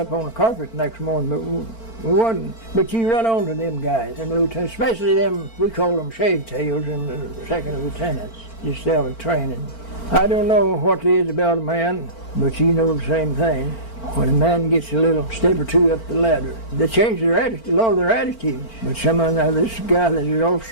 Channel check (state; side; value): late; right; 4.4 ms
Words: on the carpet next morning, but we wasn't. But you run on to them guys, and lieutenants, especially them, we call them shave tails, and the second lieutenants, just out of training. I don't know what it is about a man, but you know the same thing. When a man gets a little step or two up the ladder, they change their attitude, a lot of their attitudes. But this guy that is